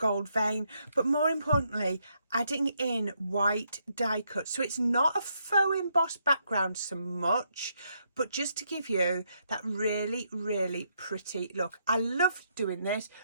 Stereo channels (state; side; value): inverted; both; correlation -0.76